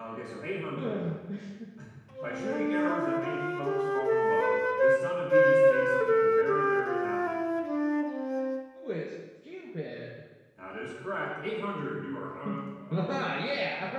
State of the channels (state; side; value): identical; both; correlation 1.00